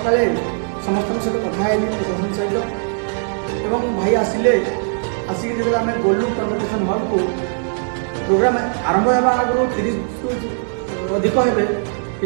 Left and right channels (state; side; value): silent; left; digital silence